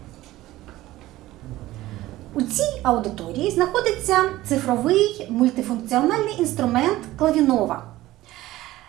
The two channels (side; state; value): left; quieter; 16.5 dB